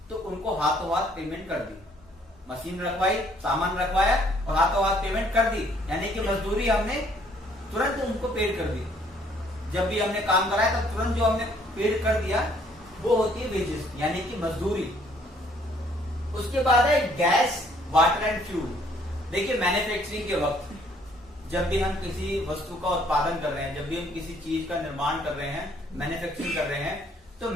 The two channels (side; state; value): both; normal; correlation 0.63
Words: तो उनको हाथों हाथ पेमेंट कर दी। मशीन रखवाई, सामान रखवाया और हाथों हाथ पेमेंट कर दी, यानी कि मजदूरी हमने तुरंत उनको पेड कर दी। जब भी हमने काम कराया तब तुरंत जो हमने पेड कर दिया वो होती है वेजेस यानी कि मजदूरी। उसके बाद है गैस, वाटर एंड फ्यूल। देखिए मैन्युफैक्चरिंग के वक्त जब भी हम किसी वस्तु का उत्पादन कर रहे हैं, जब भी हम किसी चीज का निर्माण कर रहे हैं, मैन्युफैक्चरिंग कर रहे हैं, तो